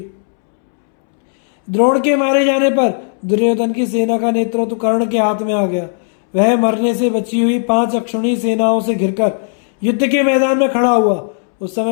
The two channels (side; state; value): right; silent; 70 dB below the other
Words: द्रोण के मारे जाने पर दुर्योधन की सेना का नेतृत्व कर्ण के हाथ में आ गया। वह मरने से बची हुई 5 अक्षौहिणी सेनाओं से घिरकर युद्ध के मैदान में खड़ा हुआ। उस